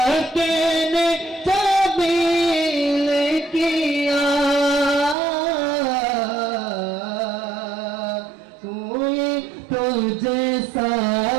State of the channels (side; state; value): left; drops out; at 5.2 s